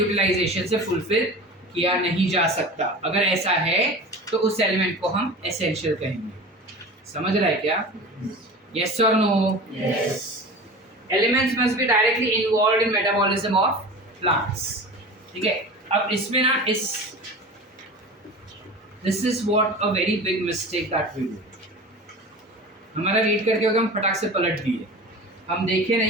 से फुलफिल किया नहीं जा सकता. अगर ऐसा है तो उस एलिमेंट को हम एसेंशियल कहेंगे. समझ रहा है क्या? Yes or no? Yes. Elements must be directly involved in metabolism of plants. ठीक है. अब इसमें ना this is what a very big mistake that we do. हमारा रीड करके होगा हम फटाक से पलट दिए. हम देखे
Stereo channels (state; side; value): normal; both; correlation 0.34